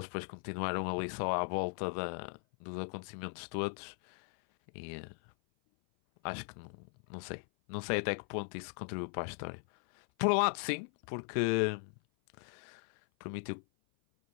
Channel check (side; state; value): right; silent; 53 dB below the other